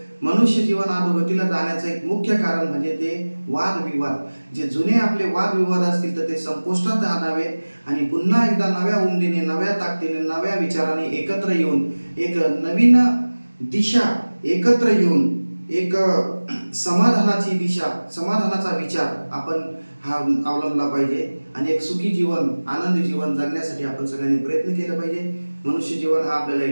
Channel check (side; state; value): both; inverted; correlation -1.00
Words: मनुष्य जीवन अधोगतीला जाण्याचं एक मुख्य कारण म्हणजे ते वादविवाद. जे जुने आपले वादविवाद असतील तर ते संपुष्टात आणावे आणि पुन्हा एकदा नव्या उमदीने, नव्या ताकदीने, नव्या विचाराने एकत्र येऊन एक नवीन दिशा, एकत्र येऊन एक समाधानाची दिशा, समाधानाचा विचार आपण हा अवलंबला पाहिजे आणि एक सुखी जीवन, आनंदी जीवन जगण्यासाठी आपण सगळ्यांनी प्रयत्न केला पाहिजे. मनुष्य जीवन हा आपल्याला